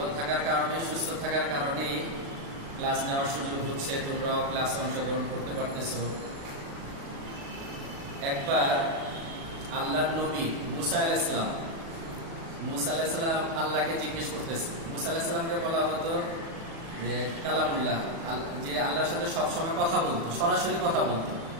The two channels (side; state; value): left; late; 36 ms